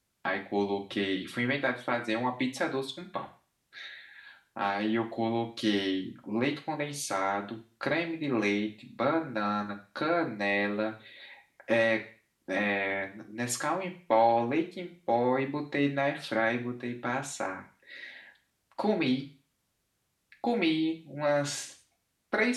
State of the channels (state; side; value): identical; both; correlation 1.00